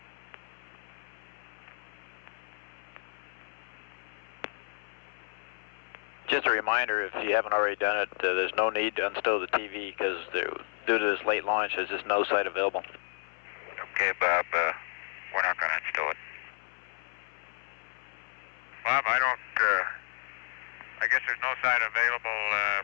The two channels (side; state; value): right; silent; 57 dB below the other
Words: Just a reminder, if you haven't already done it, there's no need to unstow the TV because due to this late launch, there's just no site available. Okay, Bob, we're not going to install it. Bob, I guess there's no site available